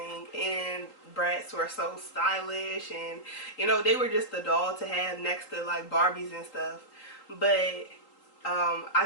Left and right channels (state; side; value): late; right; 3.8 ms